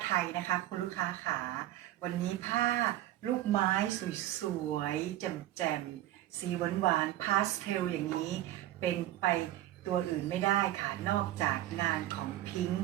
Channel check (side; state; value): left; quieter; 14.2 dB